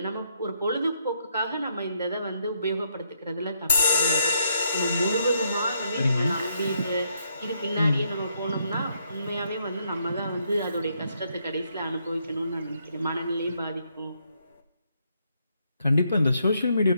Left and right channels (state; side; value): inverted; both; correlation -0.75